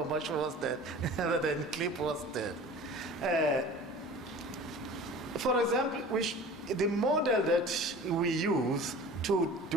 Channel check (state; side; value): normal; both; correlation 0.41